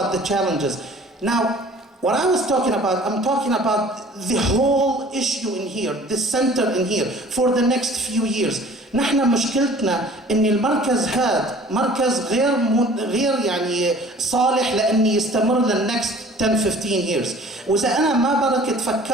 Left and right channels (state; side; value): normal; both; correlation 0.49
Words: the challenges. Now, what I was talking about, I'm talking about the whole issue in here, the center in here, for the next few years. نحن مشكلتنا ان المركز هذا مركز غير يعني صالح لان يستمر للنكست 10 15 years. واذا انا ما بركت